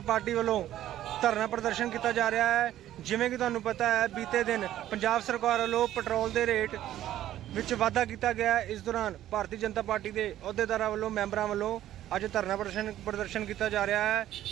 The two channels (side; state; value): left; quieter; 12.8 dB